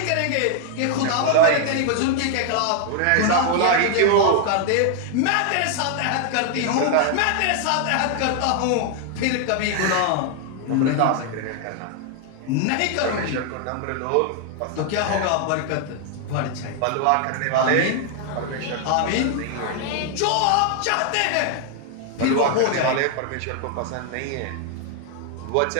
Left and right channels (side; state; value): both; different; correlation 0.00